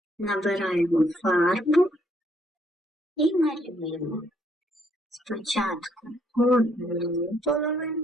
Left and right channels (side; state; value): both; normal; correlation 0.69